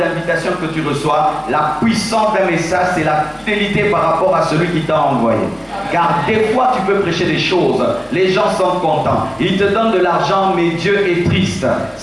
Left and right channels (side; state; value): both; identical; correlation 1.00